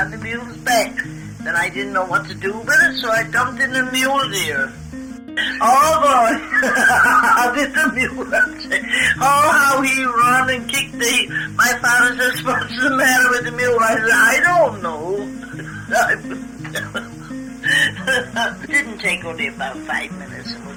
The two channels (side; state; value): both; identical; correlation 1.00